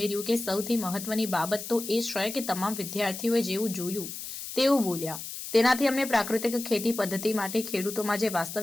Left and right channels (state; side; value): noise; left; hiss, 9 dB below the sound